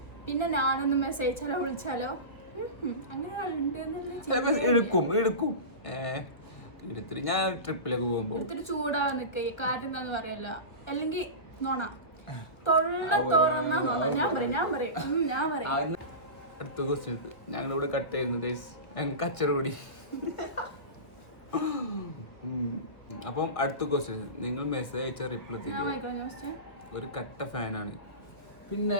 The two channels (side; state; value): right; late; 1.3 ms